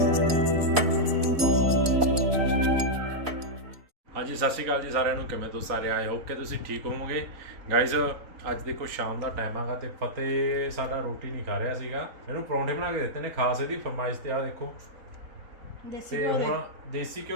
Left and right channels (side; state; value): left; late; 4.0 ms